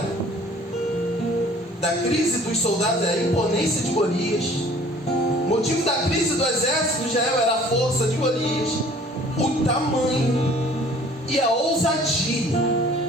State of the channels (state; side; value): normal; both; correlation 0.52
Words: da crise dos soldados era a imponência de Golias. O motivo da crise do exército de Israel era a força de Golias, o tamanho e a ousadia.